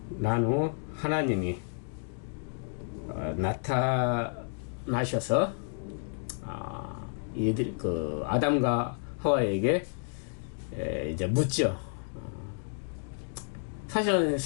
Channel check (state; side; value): silent; right; 57 dB below the other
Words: 난 후 하나님이 나타나셔서 이들 그 아담과 하와에게 이제 묻죠. 사실은